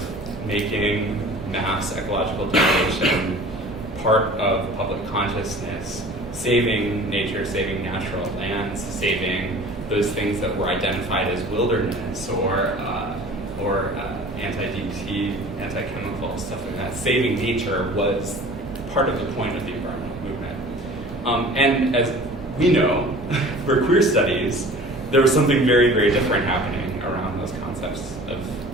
making mass ecological degradation part of public consciousness, saving nature, saving natural lands, saving those things that were identified as wilderness or anti-DT, anti-chemical, stuff like that. Saving nature was part of the point of the environmental movement. And as we know, for queer studies, there was something very, very different happening around those concepts of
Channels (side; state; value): both; normal; correlation 0.44